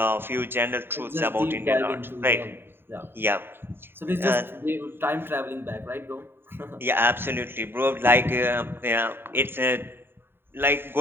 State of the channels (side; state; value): left; late; 0.11 ms